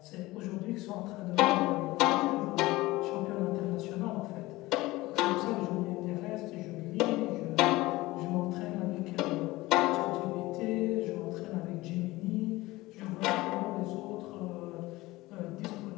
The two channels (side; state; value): right; quieter; 19.4 dB